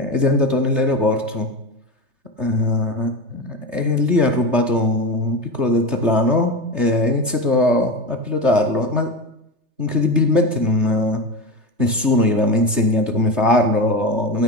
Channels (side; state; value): left; late; 3.3 ms